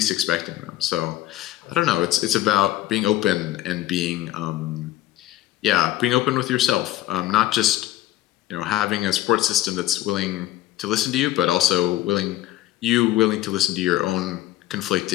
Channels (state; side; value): quieter; right; 14.6 dB